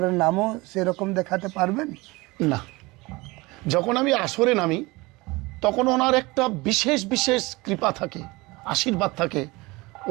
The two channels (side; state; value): left; quieter; 23.1 dB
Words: নামও সেরকম দেখাতে পারবেন? না, যখন আমি আসরে নামি তখন ওনার একটা বিশেষ বিশেষ কৃপা থাকে, আশীর্বাদ থাকে,